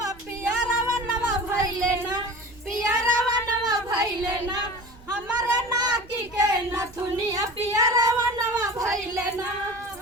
पियरवनवा भइले ना पियरवनवा भइले ना हमारे नाकी के नथुनिया पियरवनवा भइले ना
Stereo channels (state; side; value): noise; right; rumble, 23 dB below the sound